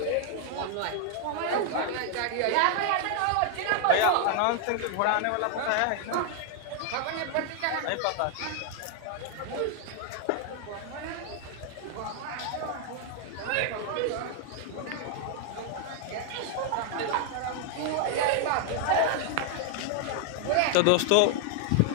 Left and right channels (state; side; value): different; both; correlation 0.00